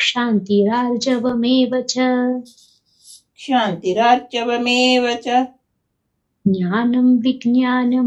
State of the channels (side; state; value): both; identical; correlation 1.00